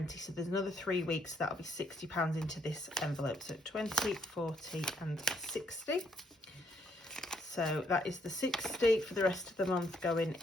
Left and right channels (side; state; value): both; normal; correlation 0.71